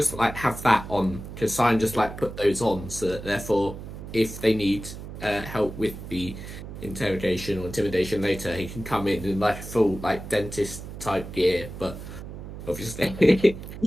like have that on? Could Sign just like put those on so that therefore, if they need help with the interrogation or intimidation later, he can come in like full like dentist type gear, but obviously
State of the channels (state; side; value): noise; right; hum, 11 dB below the sound